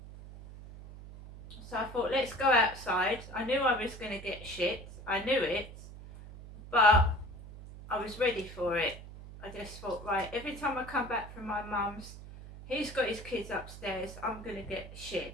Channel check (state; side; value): noise; right; hum, 14 dB below the sound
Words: So I thought, let's go outside. I knew I was going to get shit. I knew it, but I was ready for it. I just thought, right, every time I come back from my mum's, he's got his kids upstairs, I'm going to get